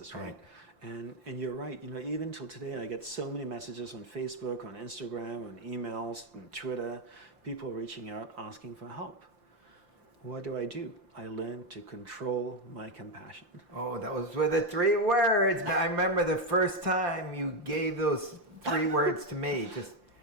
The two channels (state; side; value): late; left; 5.8 ms